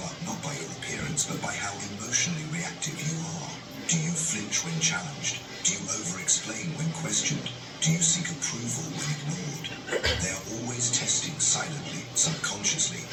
up not by your appearance, but by how emotionally reactive you are. Do you flinch when challenged? Do you over-explain when questioned? Do you seek approval when ignored? They are always testing silently, subconsciously,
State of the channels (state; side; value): identical; both; correlation 1.00